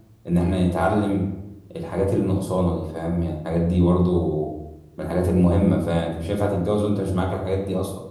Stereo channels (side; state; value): both; identical; correlation 1.00